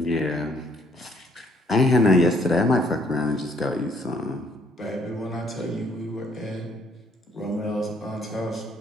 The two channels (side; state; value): both; normal; correlation 0.65